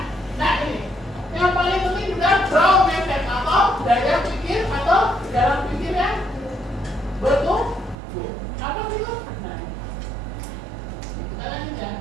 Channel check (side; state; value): left; drops out; at 8.0 s